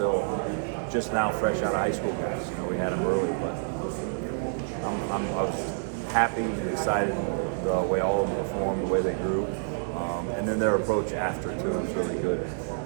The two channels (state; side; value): silent; left; digital silence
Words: just now fresh out of high school guys. We had them early, but I was happy and excited the way all of them performed, the way they grew, and then their approach after too was really good.